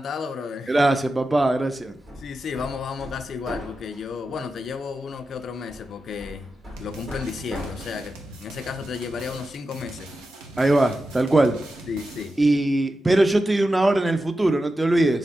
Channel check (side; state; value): both; normal; correlation 0.90